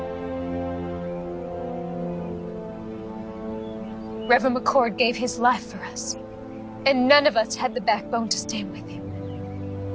Reverend McCord gave his life for us, and none of us had the backbone to stand with him.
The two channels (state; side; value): identical; both; correlation 1.00